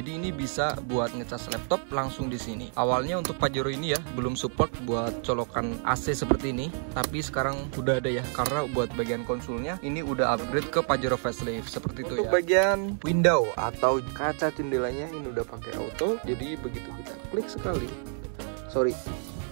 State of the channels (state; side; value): silent; left; 55 dB below the other